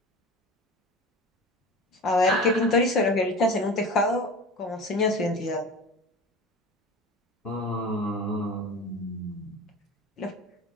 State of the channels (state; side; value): normal; both; correlation 0.33